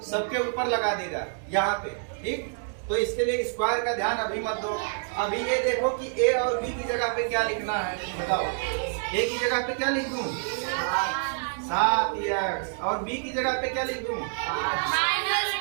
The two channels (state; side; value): silent; left; digital silence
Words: सबके ऊपर लगा देगा यहाँ पे, ठीक। तो इसके लिए स्क्वायर का ध्यान अभी मत दो। अभी ये देखो कि a और b की जगह पे क्या लिखना है, बताओ। a की जगह पे क्या लिख दूं, 7x, और b की जगह पे क्या लिख दूं,